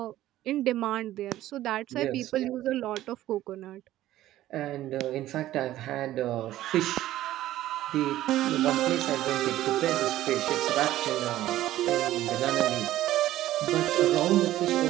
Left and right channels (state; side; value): quieter; left; 14.3 dB